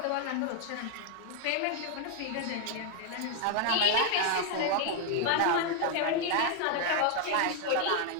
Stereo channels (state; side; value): different; both; correlation 0.00